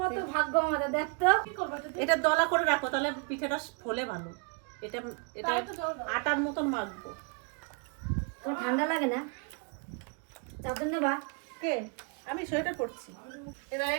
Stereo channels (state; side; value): quieter; left; 35.6 dB